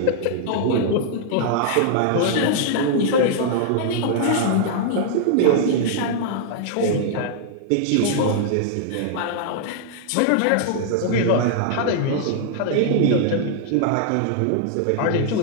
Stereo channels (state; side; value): different; both; correlation -0.01